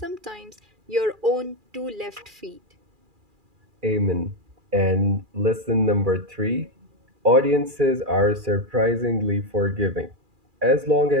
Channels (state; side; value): late; left; 2.4 ms